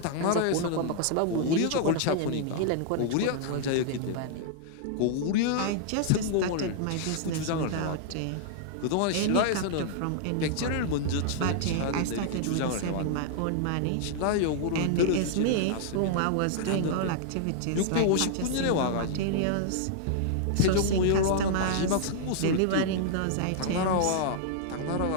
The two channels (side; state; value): both; different; correlation -0.01